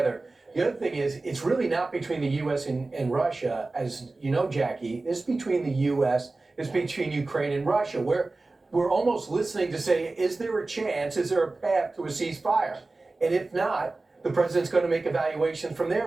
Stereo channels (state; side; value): quieter; left; 3.3 dB